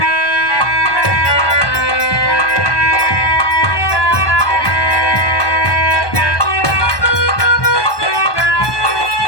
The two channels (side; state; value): right; late; 1.2 ms